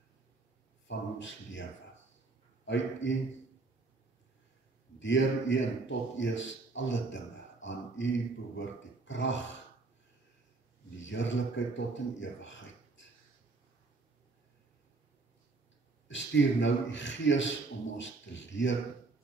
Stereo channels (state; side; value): quieter; left; 3.8 dB